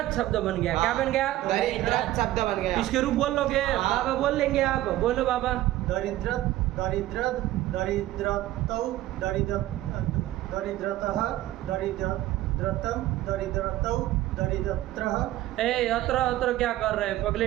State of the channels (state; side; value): quieter; left; 15.2 dB